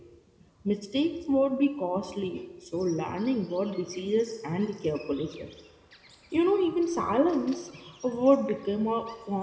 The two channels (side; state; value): both; identical; correlation 1.00